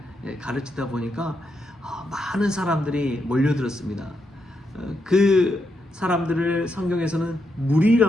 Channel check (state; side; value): normal; both; correlation 0.81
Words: 가르치다 보니까 많은 사람들이 몰려들었습니다. 그 사람들을 성경에서는